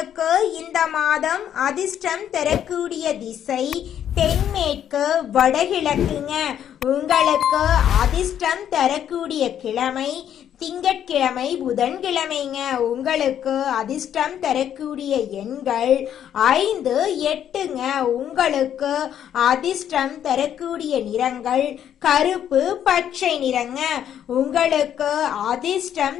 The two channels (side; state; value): right; quieter; 9.9 dB